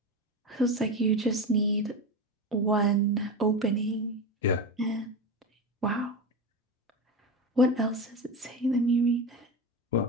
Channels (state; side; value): normal; both; correlation 0.21